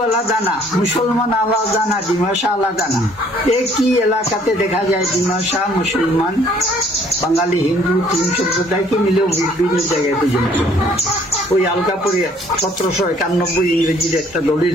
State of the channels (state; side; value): normal; both; correlation 0.61